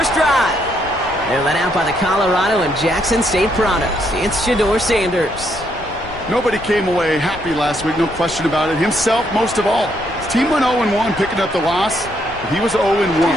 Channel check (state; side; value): noise; left; rumble, 17 dB below the sound